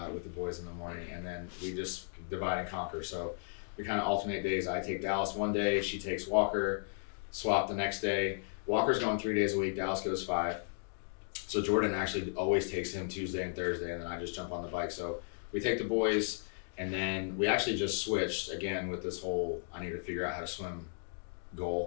with the boys in the morning, and then we just divide and conquer. So we kind of alternate days. I take Dallas one day, she takes Walker, swap the next day. Walker's going 3 days a week, Dallas goes 5. So Jordan actually always takes him Tuesday and Thursday, and then I just jump on the bike. So we take the boys, and then we actually just switched again with this whole I need to figure out how to swim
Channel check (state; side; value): silent; right; digital silence